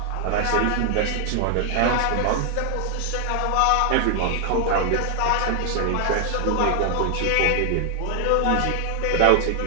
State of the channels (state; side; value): different; both; correlation 0.00